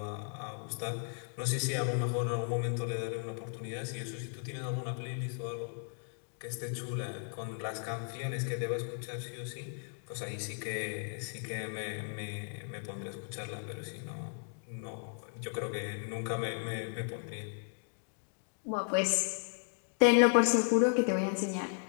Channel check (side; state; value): right; silent; 54 dB below the other